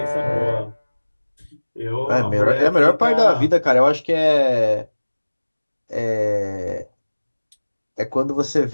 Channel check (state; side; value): inverted; both; correlation -1.00